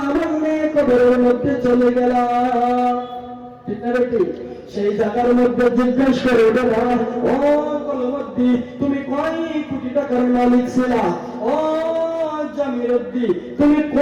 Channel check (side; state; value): both; identical; correlation 1.00